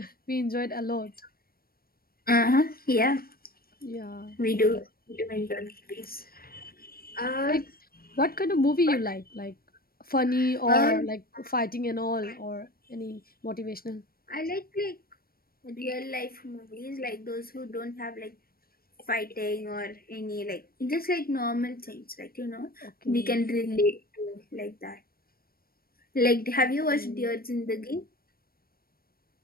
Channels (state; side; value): late; right; 0.43 ms